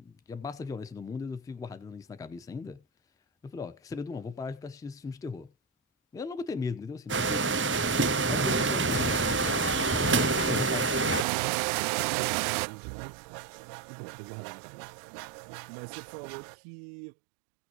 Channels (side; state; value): left; drops out; at 11.2 s